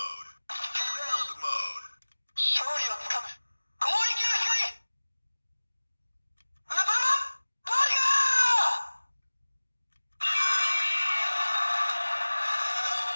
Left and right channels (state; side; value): inverted; both; correlation -1.00